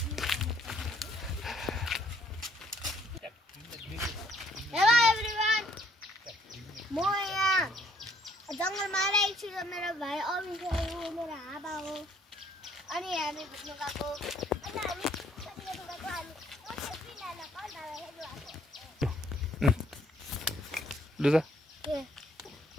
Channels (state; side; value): normal; both; correlation 0.64